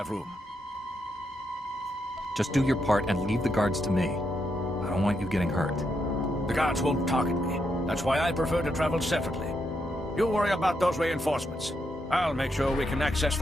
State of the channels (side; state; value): both; normal; correlation 0.81